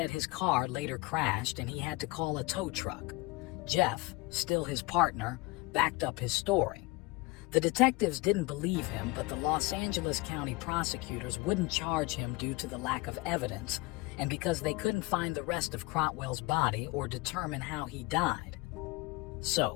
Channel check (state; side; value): quieter; right; 22.9 dB